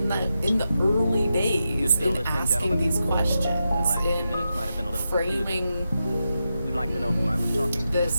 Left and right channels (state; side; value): inverted; both; correlation -0.88